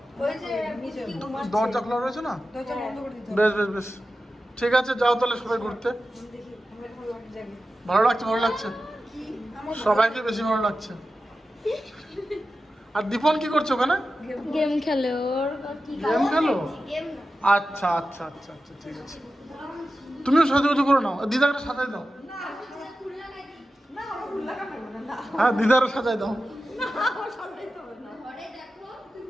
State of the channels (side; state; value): both; normal; correlation 0.93